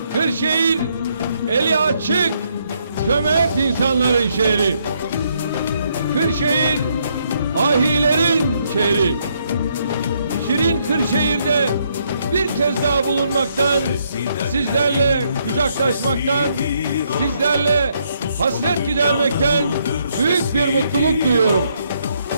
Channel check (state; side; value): inverted; both; correlation -0.73